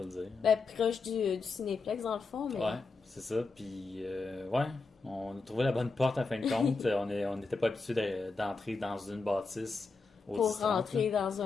le dire. Ben, proche du Cinéplex, dans le fond, mais... Ouais, c'est ça. Puis, ouais, on a trouvé la bonne porte, en fin de compte. on n'était pas habitué d'entrer dans une bâtisse au pour 10-30, rentrer dans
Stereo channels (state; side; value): quieter; right; 4.1 dB